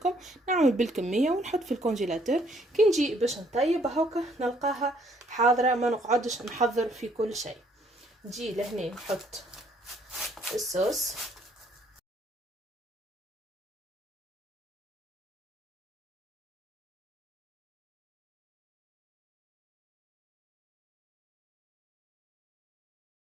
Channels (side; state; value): both; normal; correlation 0.65